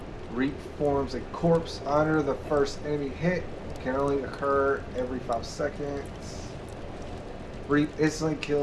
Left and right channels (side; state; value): both; identical; correlation 1.00